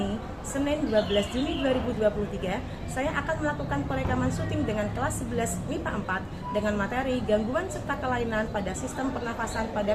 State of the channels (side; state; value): both; identical; correlation 1.00